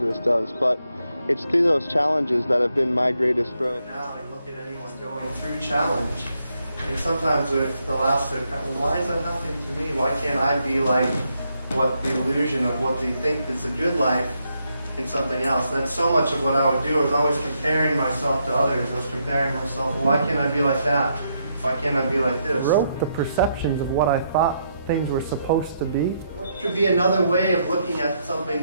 this does. But it's through those challenges that have been my greatest growth. Now I look at anyone going through challenge, and sometimes they'll ask, well, why is that happening to me? Why can't I be like what the illusion of what they think is a good life in something else? That's so much of what I would do. I was always comparing myself to others. I was comparing myself, well, why can't I be like that? Why can't I be like this? I wrote the perceptions of what I thought things were supposed to be. What should be another way of looking at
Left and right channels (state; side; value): inverted; both; correlation -0.78